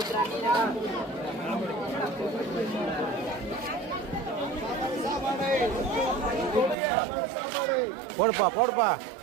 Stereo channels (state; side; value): drops out; left; at 6.8 s